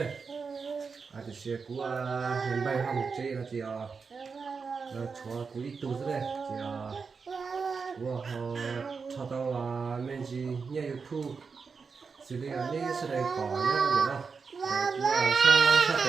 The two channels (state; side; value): quieter; left; 5.2 dB